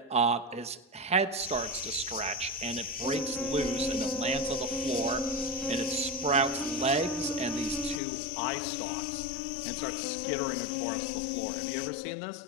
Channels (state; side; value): drops out; right; at 8.0 s